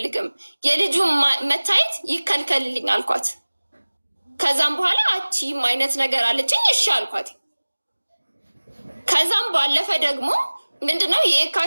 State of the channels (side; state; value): both; inverted; correlation -1.00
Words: የልጁ መታየት ይከልከልልኝ አልኳት። ከዛም በኋላ አቺም አይነት ነገር አለችኝ። እሺ አልኳት። ከዛም ባለፈ ደግሞ ምንድነው